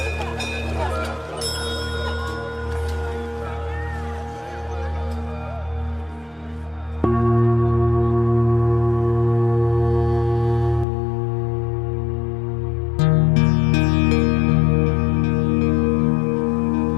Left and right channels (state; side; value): drops out; right; at 10.9 s